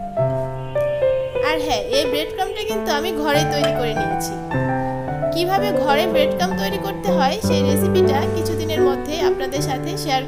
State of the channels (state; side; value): identical; both; correlation 1.00